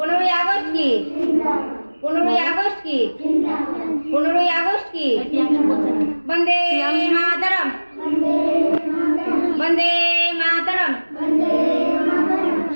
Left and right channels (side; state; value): both; inverted; correlation -1.00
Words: 15ই আগস্ট কি? 15ই আগস্ট কি? 15ই আগস্ট কি? বন্দে মাতরম। বন্দে মাতরম।